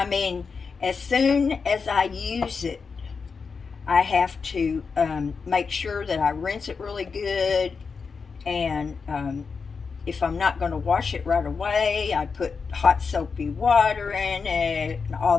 mean, as soon as I use it, I have to make sure that I rinse it really good, and if I'm not going to wash it right away, I put hot soapy water in it and all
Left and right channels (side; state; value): right; quieter; 5.2 dB